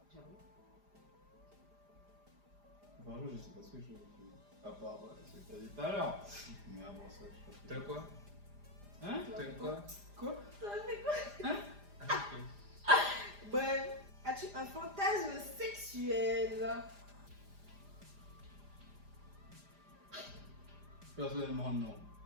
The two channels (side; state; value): left; late; 5.0 ms